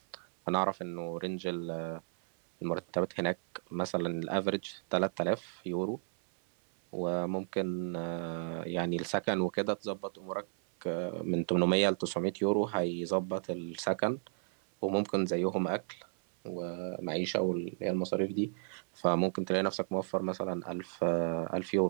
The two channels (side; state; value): left; silent; 55 dB below the other